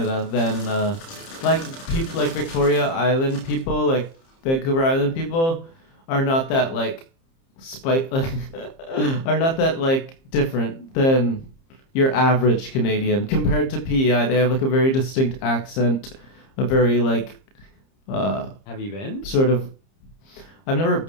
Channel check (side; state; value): right; late; 30 ms